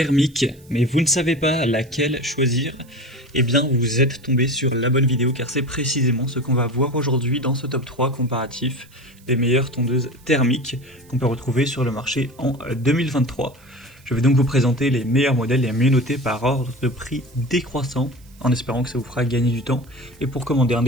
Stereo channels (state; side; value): noise; right; hiss, 28 dB below the sound